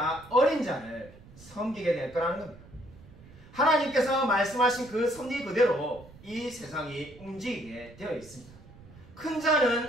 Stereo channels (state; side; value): noise; right; rumble, 21 dB below the sound